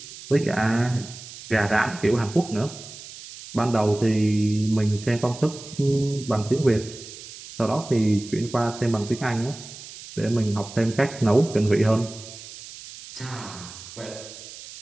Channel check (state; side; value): noise; right; hiss, 15 dB below the sound